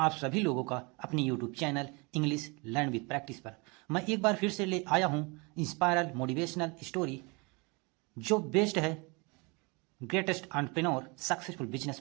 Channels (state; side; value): quieter; left; 29.2 dB